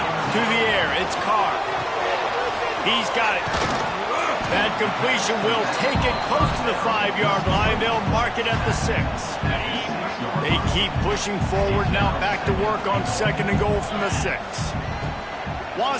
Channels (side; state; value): both; identical; correlation 1.00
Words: To the air, it's Carr. He's got it. That completion will take it close to the 5-yard line. They'll mark it at the 6. They keep pushing forward now, back to work on second and goal from the 6.